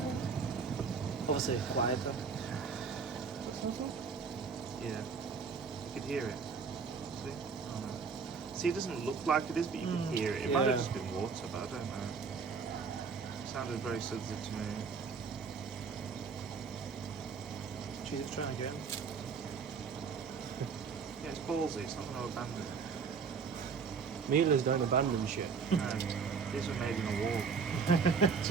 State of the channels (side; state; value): left; quieter; 5.6 dB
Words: Obviously quieter. yeah. You could hear it. See? Oh, no. See, it doesn't look like it is, but you can hear it. It might yeah. have just been water, but I don't know. Sounded very sensitive to me. Jesus, trying again. Yeah, it's ballsy. It's not going to abandon it. Miele's don't abandon shit. No, these were made in a war.